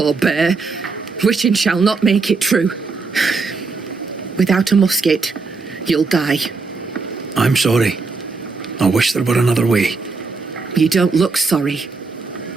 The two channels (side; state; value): left; quieter; 4.2 dB